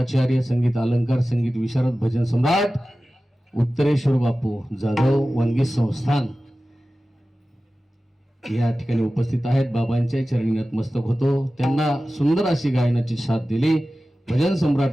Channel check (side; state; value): both; normal; correlation 0.95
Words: संगीत अलंकार संगीत विशारद भजन सम्राट उत्तरेश्वर बापू जाधव वनगी संस्थान या ठिकाणी उपस्थित आहेत. बाबांच्या चरणी नतमस्तक होतो. त्यांना सुंदर अशी गायनाची साथ दिली. भजन